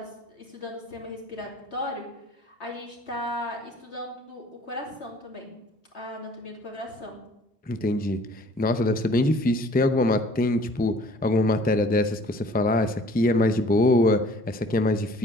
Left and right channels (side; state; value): both; normal; correlation 0.54